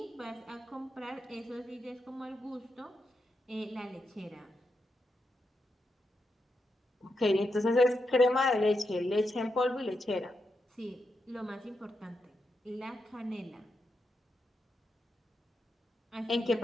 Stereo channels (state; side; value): normal; both; correlation 0.85